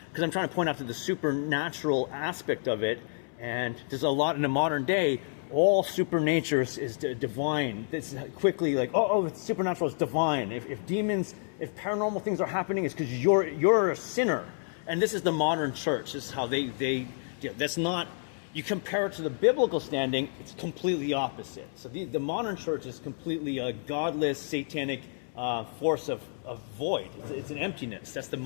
because I'm trying to point out to the supernatural aspect of it, and there's a lot in the modern day, all supernature is divine. It's quickly like, it's supernatural, it's divine. If demons, if paranormal things are happening, it's because you're a sinner. And this is the modern church. This is how they that's not, you compare it to the biblical standing, it's completely opposite. So the modern church is completely a godless, satanic force of void. It's an emptiness. That's the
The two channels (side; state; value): right; silent; 58 dB below the other